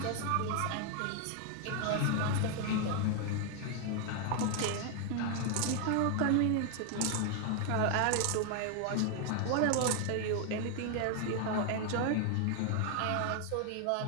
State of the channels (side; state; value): both; different; correlation 0.00